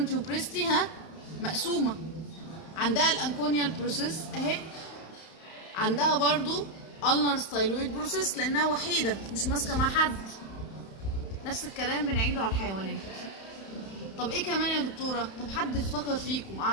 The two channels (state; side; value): late; right; 31 ms